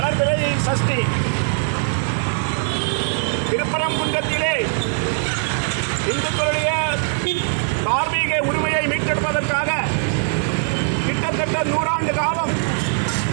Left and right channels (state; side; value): silent; left; 65 dB below the other